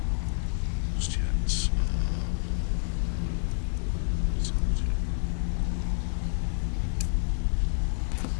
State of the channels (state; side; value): silent; right; 59 dB below the other